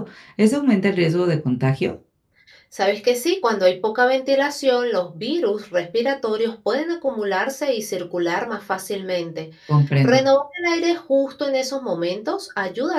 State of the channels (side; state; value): both; identical; correlation 1.00